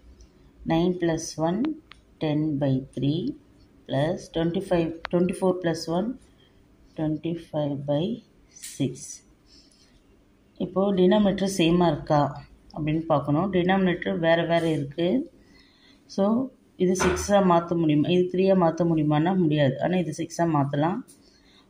9 plus 1 10 by 3 plus 24 plus 1 25 by 6. இப்போது டினாமினேட்டர் சேமாக இருக்கா அப்படின்னு பார்க்கணும். டினாமினேட்டர் வேறு இருக்குது. ஸோ இது 6ஆக மாற்ற முடியுமா, இது 3ஆக மாற்ற முடியுமான்னா முடியாது. ஆனால் இது 6ஆக மாற்றலாம்.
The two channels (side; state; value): both; identical; correlation 1.00